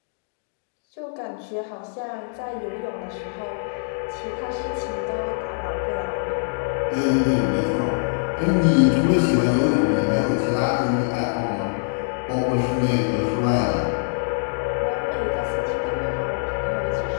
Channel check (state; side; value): silent; right; digital silence